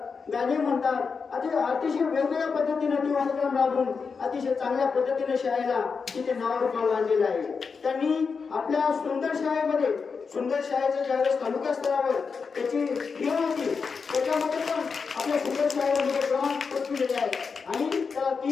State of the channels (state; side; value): quieter; right; 5.3 dB